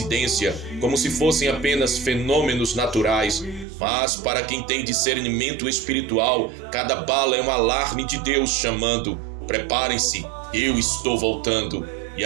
como se fossem apenas fenômenos naturais. Mas para quem tem discernimento espiritual, cada bala é um alarme de Deus chamando: preparem-se, eu estou voltando. E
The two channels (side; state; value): left; drops out; at 3.7 s